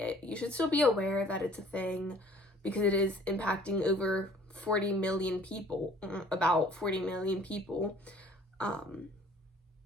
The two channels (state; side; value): normal; both; correlation 0.54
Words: you should still be aware that it's a thing, because it is impacting over 40 million people, about 40 million people. I